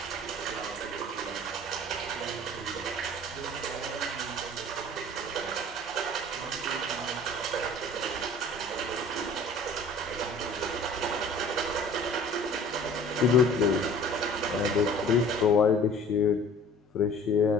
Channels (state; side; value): normal; both; correlation 0.47